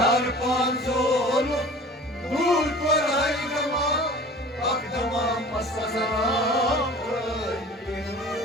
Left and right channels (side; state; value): both; normal; correlation 0.43